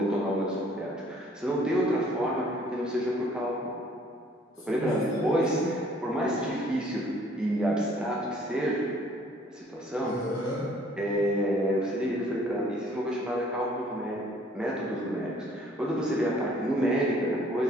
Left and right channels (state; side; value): normal; both; correlation 0.58